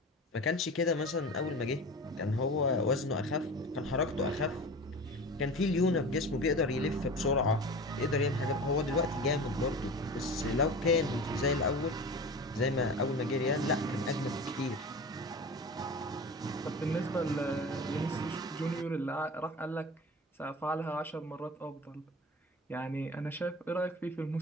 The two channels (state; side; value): normal; both; correlation 0.34